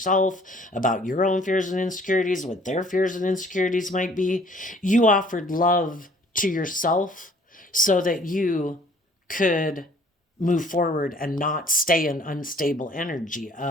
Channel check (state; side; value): normal; both; correlation 0.56